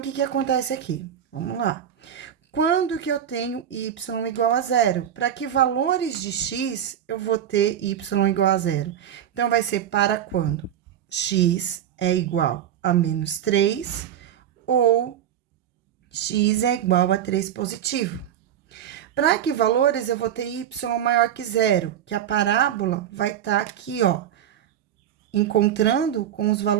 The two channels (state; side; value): quieter; left; 10.0 dB